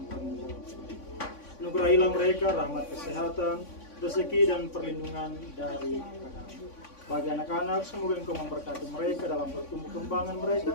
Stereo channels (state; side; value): late; right; 3.5 ms